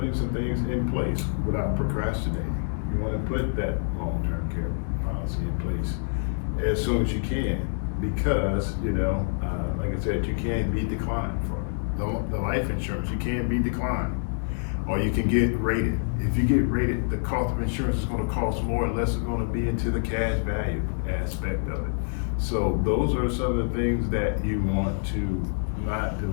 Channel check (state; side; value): silent; right; digital silence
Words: some things in place without procrastinating. You want to put that long-term care policy in place as soon as you can, because, you know, like I said, you can't be declined for the life insurance. You can't be declined, or you can get rated. If you get rated, the cost of insurance is going to cost more, unless it's going to be into the cash value aspect of it. So those are some of the things that you want to not